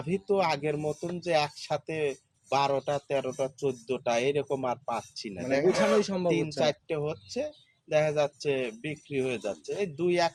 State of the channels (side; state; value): both; identical; correlation 1.00